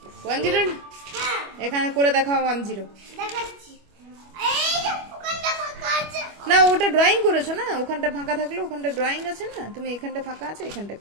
10? হ্যাঁ এখানে করে দেখাও 10। দেখাচ্ছি। এই যে ওখানটা ফাঁকা আছে। না ওটা ড্রয়িং করেছো না, ওখানটা ফাঁকা থাকলে ওখানটা ড্রয়িং আছে না, তুমি এখানটা ফাঁকা আছে এখানটা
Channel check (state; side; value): late; left; 25 ms